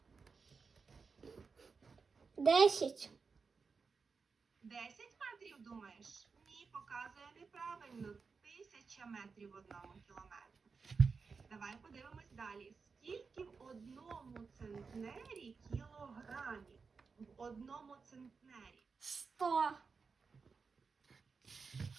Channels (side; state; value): left; quieter; 5.0 dB